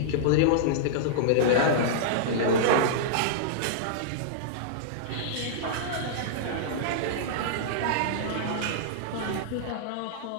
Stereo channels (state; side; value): different; both; correlation -0.02